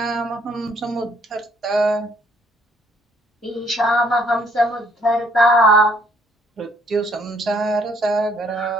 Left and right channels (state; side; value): normal; both; correlation 0.65